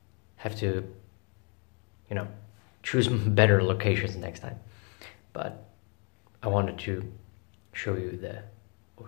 have to, choose better locations next time. But I wanted to show you the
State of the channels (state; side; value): quieter; right; 36.8 dB